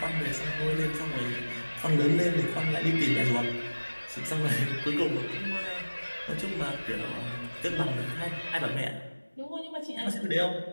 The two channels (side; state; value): both; inverted; correlation -1.00